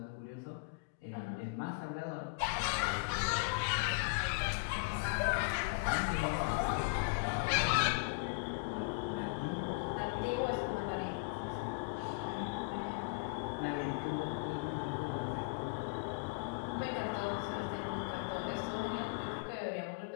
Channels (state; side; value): quieter; right; 31.1 dB